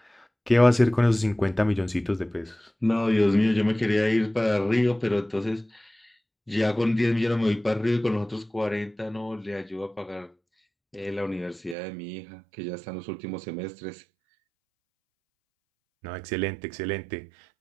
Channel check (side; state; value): left; drops out; at 11.8 s